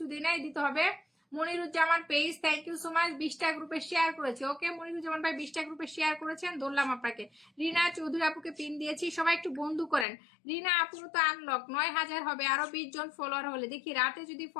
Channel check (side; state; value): right; drops out; at 10.1 s